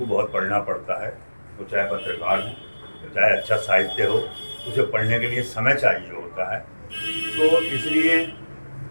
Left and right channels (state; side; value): inverted; both; correlation -1.00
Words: बहुत पढ़ना पड़ता है। तो चाहे पत्रकार हो, चाहे अच्छा साहित्य हो, उसे पढ़ने के लिए समय चाहिए होता है। तो इसलिए,